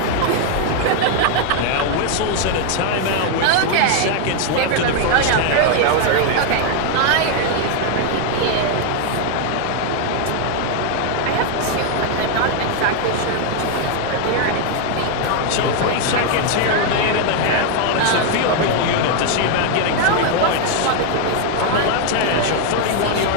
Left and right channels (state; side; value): different; both; correlation 0.01